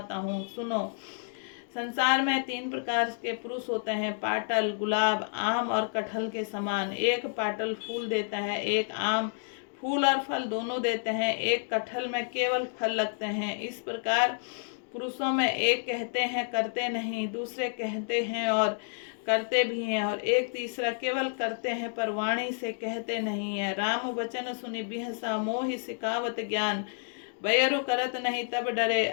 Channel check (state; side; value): silent; right; digital silence